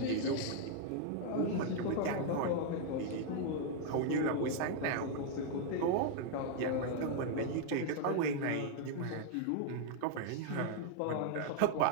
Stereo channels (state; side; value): different; both; correlation 0.00